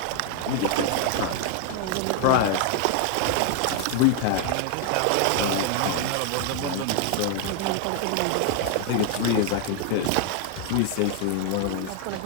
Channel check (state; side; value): different; both; correlation 0.00